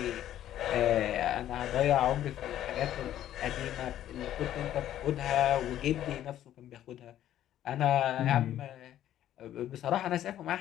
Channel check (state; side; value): quieter; right; 12.0 dB